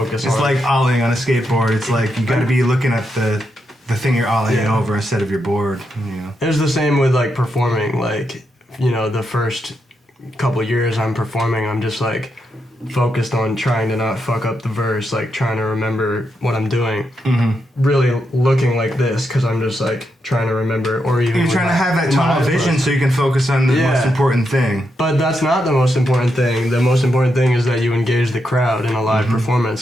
it's on like ollieing on a skateboard. It's like you got to be looking at the thing you're ollieing over instead of your board. You know. It was the same with like performing. Like, you know, the first couple years I'm performing, I'm just like focused on trying to not fuck up the verse, like trying to remember what I'm doing. Really looking like this because I'm just like trying to remember, or even you're trying to have that tunnel vision so you can focus on the most important thing. But that's not the most important thing. The most important thing is that you engage the crowd in a live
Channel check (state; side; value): normal; both; correlation 0.83